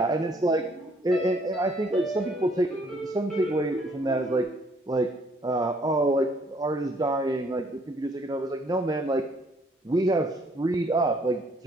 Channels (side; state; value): both; normal; correlation 0.64